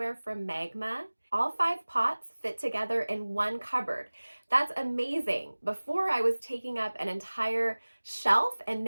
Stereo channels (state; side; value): inverted; both; correlation -1.00